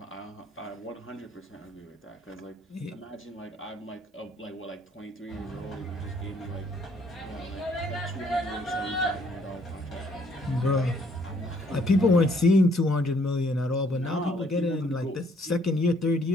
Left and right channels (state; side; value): normal; both; correlation 0.65